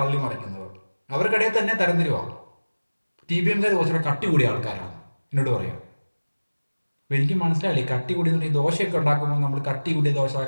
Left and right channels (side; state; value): both; inverted; correlation -1.00